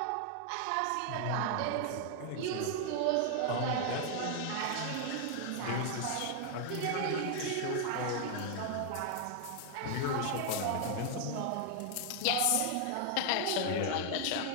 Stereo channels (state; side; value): different; both; correlation 0.00